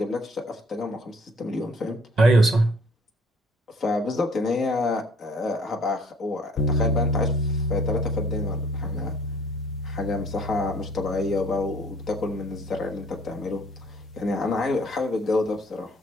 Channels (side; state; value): both; normal; correlation 0.57